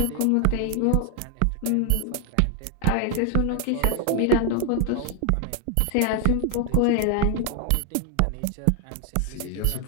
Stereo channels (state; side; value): different; both; correlation 0.00